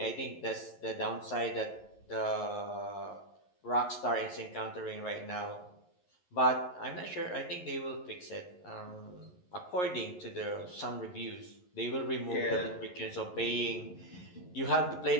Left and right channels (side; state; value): right; late; 11 ms